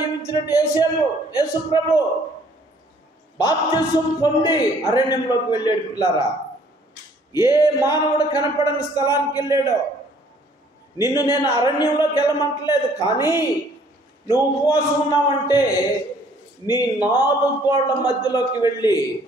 యేసుప్రభు బాప్తిసం పొంది అరణ్యంలోకి వెళ్ళాడు. పిల్లారా, ఏ మానవుడు కనపడని స్థలానికి వెళ్ళాడో. నిన్ను నేను అరణ్యంలోకి వెళ్ళమంటలేదు, కానీ నువ్వు ఉపవాసం ఉన్నావంటే నీ 4 గోడల మధ్యలోకి వెళ్ళి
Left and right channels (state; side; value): normal; both; correlation 0.59